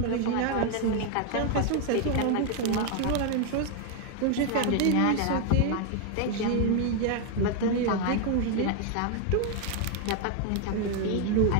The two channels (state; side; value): different; both; correlation 0.01